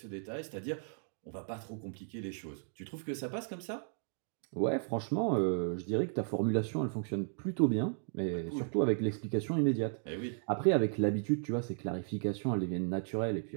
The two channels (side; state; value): left; silent; 54 dB below the other